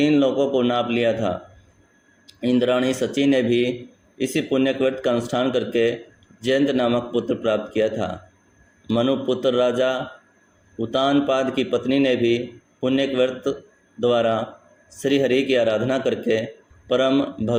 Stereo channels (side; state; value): both; identical; correlation 1.00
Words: लोकों को नाप लिया था। इंद्राणी सची ने भी इसी पुण्यक व्रत का अनुष्ठान करके जयंत नामक पुत्र प्राप्त किया था। मनुपुत्र राजा उत्तानपाद की पत्नी ने भी पुण्यक व्रत द्वारा श्री हरि की आराधना करके परम